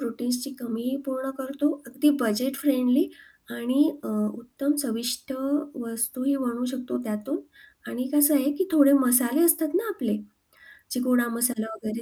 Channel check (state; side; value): identical; both; correlation 1.00